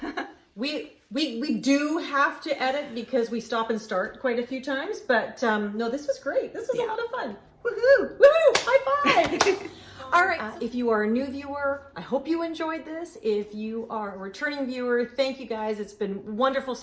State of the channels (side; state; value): both; identical; correlation 1.00